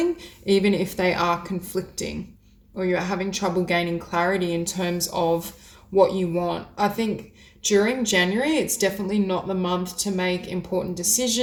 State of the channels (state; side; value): identical; both; correlation 1.00